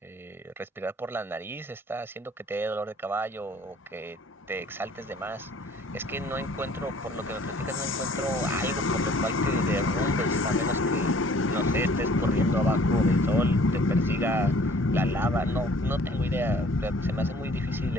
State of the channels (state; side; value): normal; both; correlation 0.54